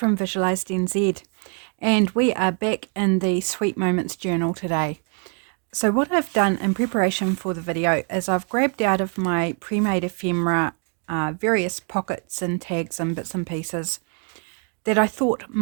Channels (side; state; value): left; quieter; 39.6 dB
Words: Visualized NZ, and we are back in the Sweet Moments journal today. So what I've done in preparation for the video is I've grabbed out of my pre-made ephemera various pockets and tags and bits and pieces that I thought